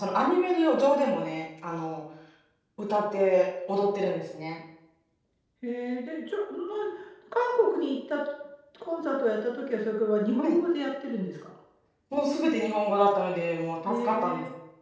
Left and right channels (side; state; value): both; identical; correlation 1.00